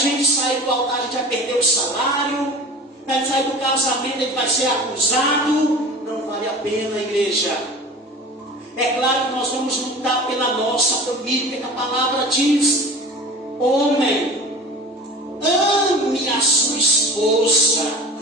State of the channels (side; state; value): both; normal; correlation 0.38